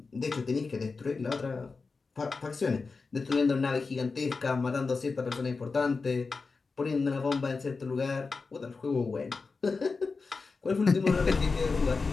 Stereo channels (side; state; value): right; quieter; 4.3 dB